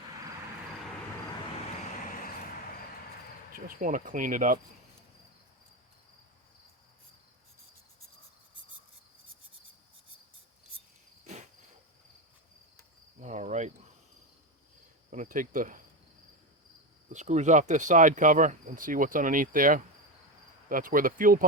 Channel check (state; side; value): normal; both; correlation 0.15